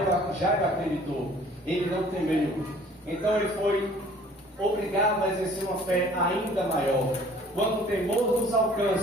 acreditou, ele não temeu. Então ele foi obrigado a exercer uma fé ainda maior. Quando o temor nos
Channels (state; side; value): normal; both; correlation 0.53